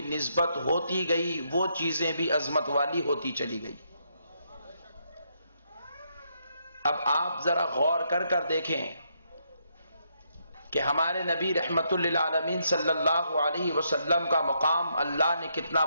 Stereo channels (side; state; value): both; inverted; correlation -0.76